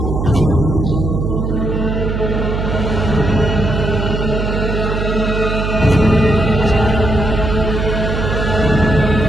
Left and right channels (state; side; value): noise; right; hum, 2 dB below the sound